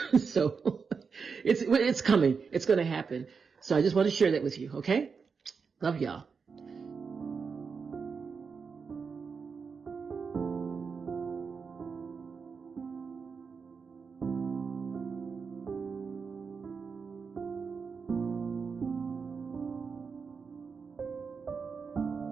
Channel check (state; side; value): quieter; left; 5.5 dB